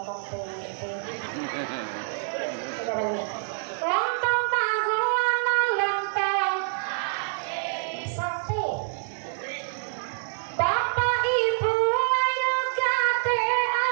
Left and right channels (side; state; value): left; silent; digital silence